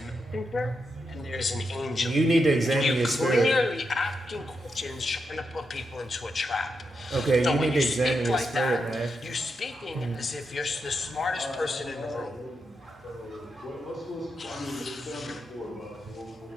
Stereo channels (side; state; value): both; normal; correlation 0.85